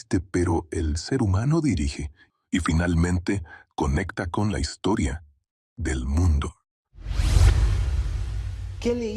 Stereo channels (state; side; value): identical; both; correlation 1.00